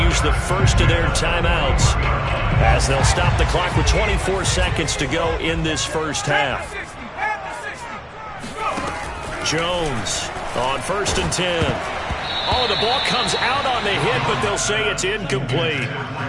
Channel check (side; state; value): both; identical; correlation 1.00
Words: the first of their timeouts as they'll stop the clock with 24 seconds to go in this first half. Jones on 1st and 10. Oh, the ball comes out on the hit, but they'll say it's incomplete.